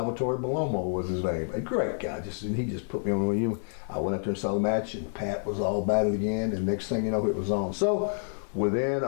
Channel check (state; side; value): silent; right; 59 dB below the other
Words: Bellomo was his name. A great guy, he just put me on. I went up there and saw the match, and Pat was all about it again, and next thing you know, it was on. So within